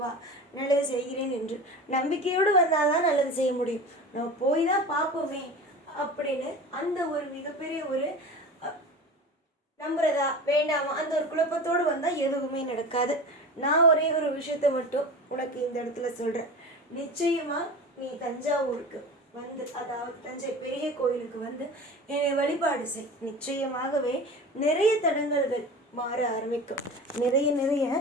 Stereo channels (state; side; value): normal; both; correlation 0.33